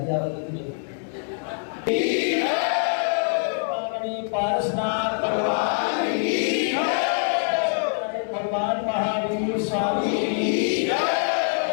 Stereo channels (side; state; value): right; silent; 62 dB below the other